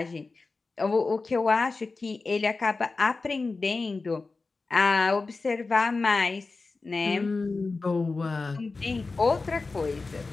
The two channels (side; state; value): right; quieter; 3.9 dB